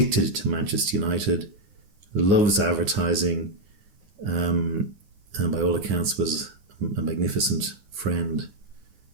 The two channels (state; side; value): late; left; 9.7 ms